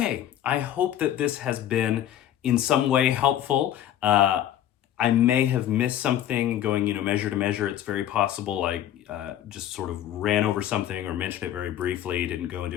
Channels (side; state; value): right; quieter; 11.4 dB